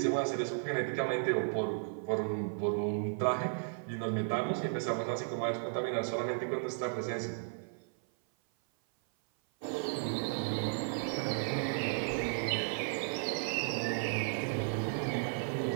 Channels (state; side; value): silent; left; 55 dB below the other